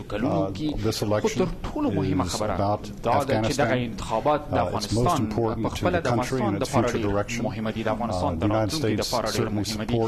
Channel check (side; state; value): both; identical; correlation 1.00